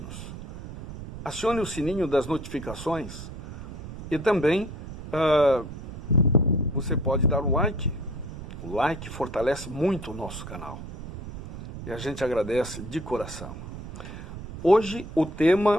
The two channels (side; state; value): right; noise; rumble, 11 dB below the sound